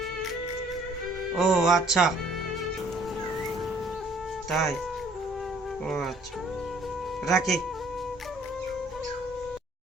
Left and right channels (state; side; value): normal; both; correlation 0.60